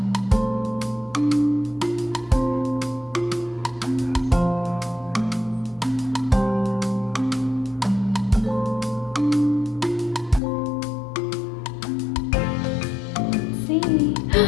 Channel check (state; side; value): drops out; right; at 10.4 s